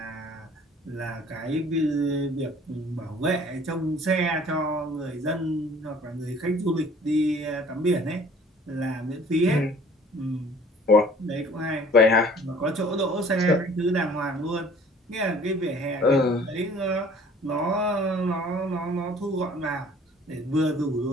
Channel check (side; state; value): both; normal; correlation 0.52